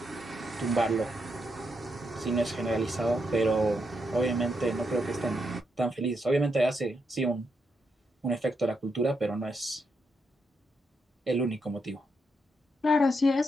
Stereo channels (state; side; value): normal; both; correlation 0.81